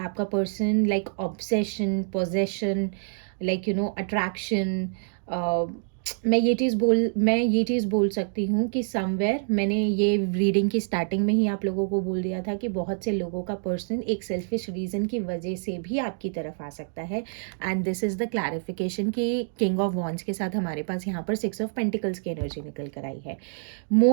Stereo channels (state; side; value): silent; left; digital silence